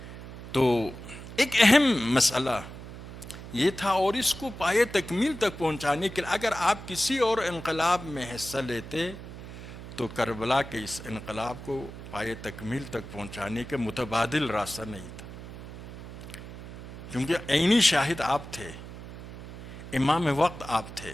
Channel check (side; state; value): right; noise; hum, 12 dB below the sound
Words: تو ایک اہم مسئلہ یہ تھا، اور اس کو پائے تکمیل تک پہنچانے کے لیے اگر آپ کسی اور انقلاب میں حصہ لیتے تو کربلا کے اس انقلاب کو پائے تکمیل تک پہنچانے کے متبادل راستہ نہیں تھا، کیونکہ عینی شاہد آپ تھے، امام وقت آپ تھے۔